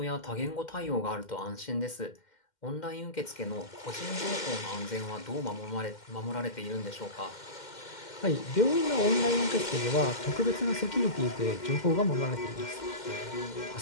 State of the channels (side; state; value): right; late; 2.1 ms